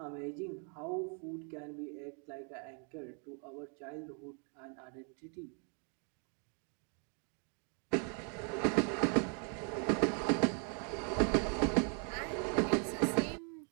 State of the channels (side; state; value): left; quieter; 39.7 dB